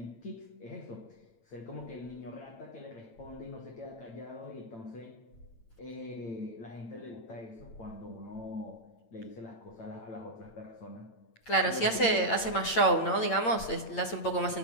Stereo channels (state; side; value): late; right; 8.8 ms